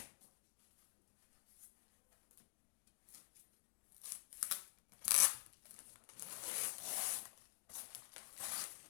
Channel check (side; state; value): right; silent; digital silence